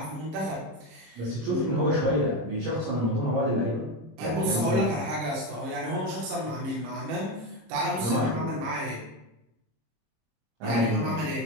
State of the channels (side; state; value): left; late; 26 ms